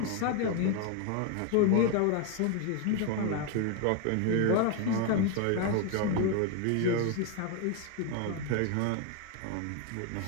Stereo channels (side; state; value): both; different; correlation 0.01